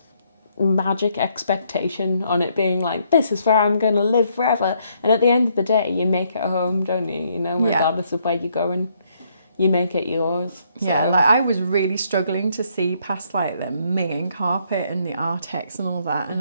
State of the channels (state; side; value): inverted; both; correlation -0.71